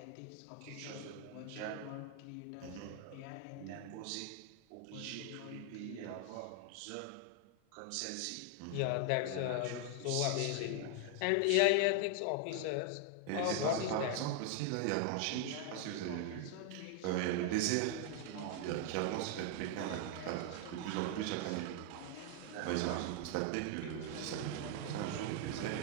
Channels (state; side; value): different; both; correlation 0.00